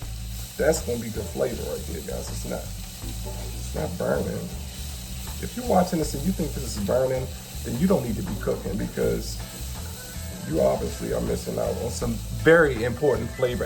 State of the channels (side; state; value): both; identical; correlation 1.00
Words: That's going to be good flavor right there, guys. It's not burning. If you're watching this and you think this is burning, then you don't need to be cooking because you obviously are missing out on some very important flavor